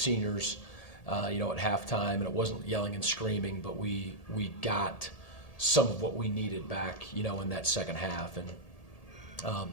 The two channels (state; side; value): late; right; 1.8 ms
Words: at halftime, and it wasn't yelling and screaming, but we got some of what we needed back, in that second half. And